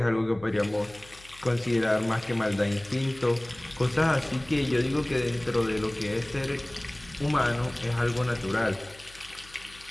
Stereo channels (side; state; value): left; noise; hum, 23 dB below the sound